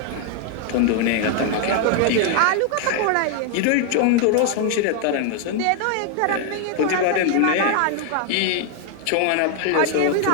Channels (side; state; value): both; different; correlation 0.00